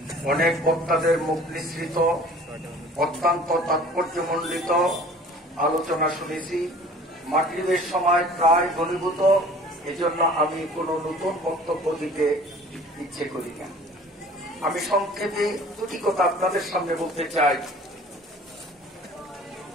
অনেক বক্তাদের মুখ নিঃসৃত অত্যন্ত তাৎপর্যমণ্ডিত আলোচনা শুনেছি। মাগরিবের সময় প্রায় ঘনীভূত, এজন্য আমি কোনো নতুন বক্তব্য দিতে ইচ্ছে করি না। আমি সংক্ষেপে দুটি কথা আপনাদের সামনে বলতে চাই।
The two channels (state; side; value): normal; both; correlation 0.48